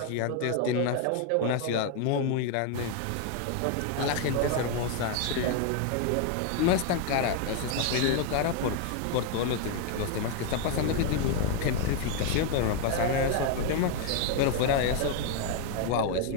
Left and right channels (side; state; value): both; different; correlation 0.01